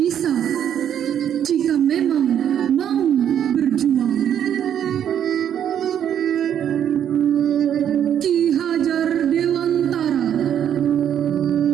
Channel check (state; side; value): quieter; left; 9.5 dB